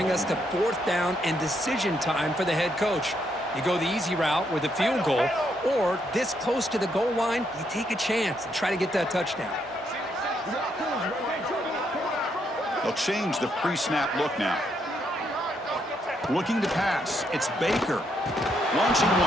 us to fourth down and decision time for the head coach. You go the easy route with a field goal, or this close to the goal line, you take a chance and try to get that touchdown. They'll change the pre-snap look now. Looking to pass. It's Baker. Launching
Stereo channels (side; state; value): both; normal; correlation 0.76